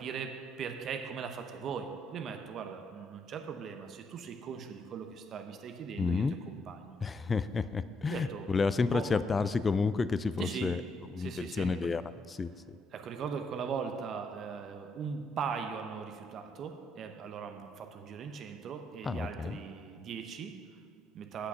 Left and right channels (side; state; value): both; normal; correlation 0.76